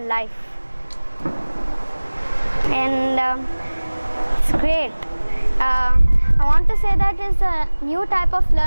and it's great. I want to say that it's a new type of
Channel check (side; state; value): both; inverted; correlation -1.00